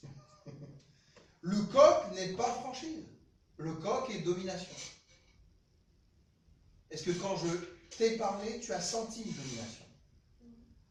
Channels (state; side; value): identical; both; correlation 1.00